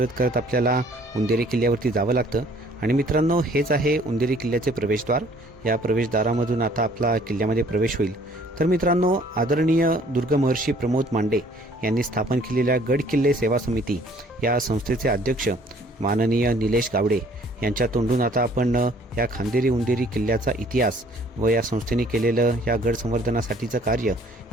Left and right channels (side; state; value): both; normal; correlation 0.58